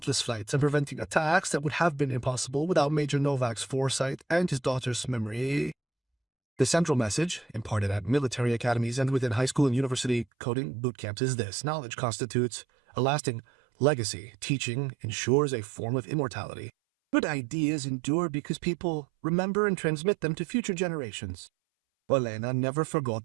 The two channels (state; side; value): drops out; left; at 10.2 s